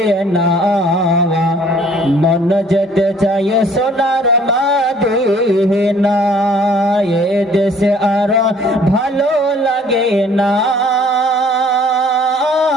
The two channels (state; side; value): normal; both; correlation 0.56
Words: না, মন যেতে চায় সোনার মদিনা। এ দেশে আর ভালো লাগে না